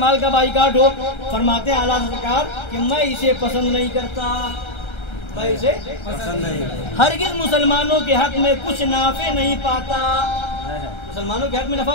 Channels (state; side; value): late; right; 1.3 ms